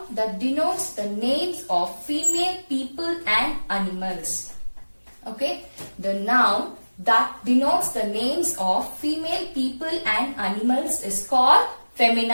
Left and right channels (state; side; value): inverted; both; correlation -1.00